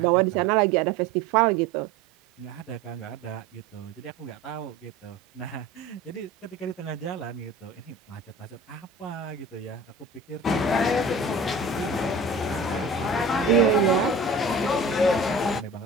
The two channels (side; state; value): left; quieter; 3.1 dB